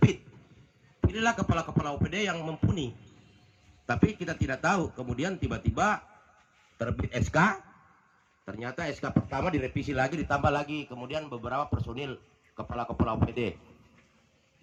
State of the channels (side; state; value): both; identical; correlation 1.00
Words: Pilihlah kepala-kepala OPD yang mumpuni. Tapi kita tidak tahu, kemudian tiba-tiba terbit SK, ternyata SK pertama direvisi lagi, ditambah lagi, kemudian beberapa personil kepala-kepala OPD.